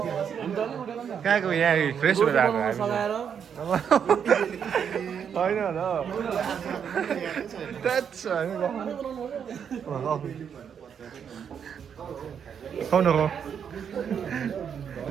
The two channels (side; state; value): left; quieter; 7.7 dB